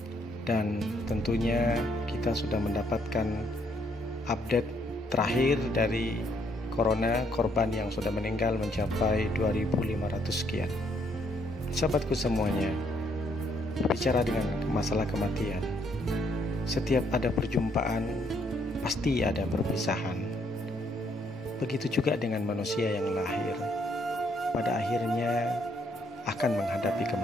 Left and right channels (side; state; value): both; normal; correlation 0.70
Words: Dan tentunya kita sudah mendapatkan update terakhir dari Corona, korban yang sudah meninggal mencapai 2.500 sekian. Sahabatku semuanya, berbicara dengan masalah kematian, setiap ada perjumpaan, pasti ada perpisahan. Begitu juga dengan manusia yang lahir, pada akhirnya akan menghadapi